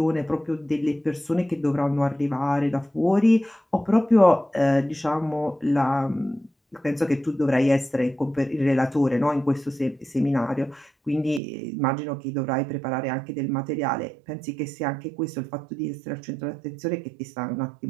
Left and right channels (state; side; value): drops out; left; at 11.4 s